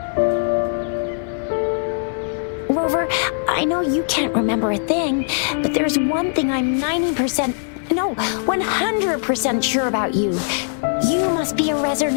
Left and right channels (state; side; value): silent; right; 65 dB below the other